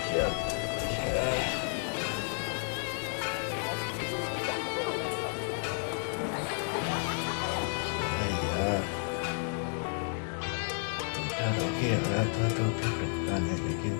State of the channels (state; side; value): silent; right; 57 dB below the other